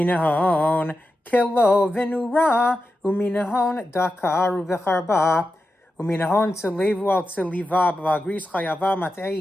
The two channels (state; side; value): normal; both; correlation 0.90